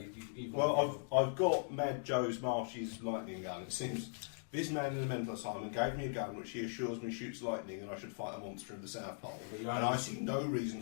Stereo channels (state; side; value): silent; right; digital silence